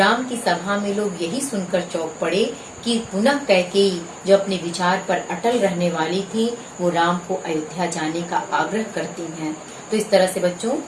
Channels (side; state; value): both; identical; correlation 1.00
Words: की सभा में लोग यही सुनकर चौंक पड़े कि पुनः कैकेयी जो अपने विचार पर अटल रहने वाली थी वो राम को अयोध्या जाने का आग्रह करती हैं। तो इस तरह से बच्चों